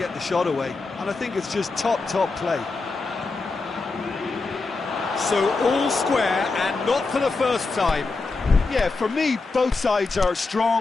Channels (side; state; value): right; quieter; 3.9 dB